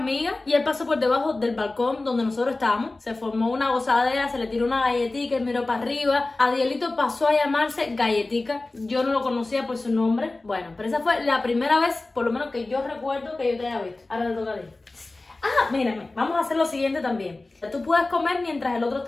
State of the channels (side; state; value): right; quieter; 3.1 dB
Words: y él pasó por debajo del balcón donde nosotros estábamos. Se formó una gozadera, se le tiró una galletica, él miró para arriba. Adielito pasó a llamarse Galletica. Yo no lo conocía por su nombre. Bueno, pero esa fue la primera vez, por lo menos que yo recuerdo, que yo te haya visto. Ahora te toca a ti. Mírame, vamos a hacer lo siguiente también. Tú puedes comer mientras el otro